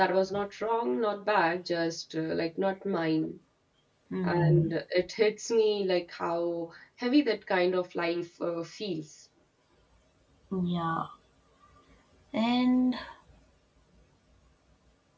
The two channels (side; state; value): both; identical; correlation 1.00